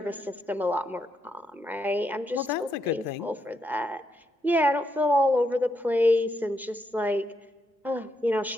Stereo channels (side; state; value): both; normal; correlation 0.80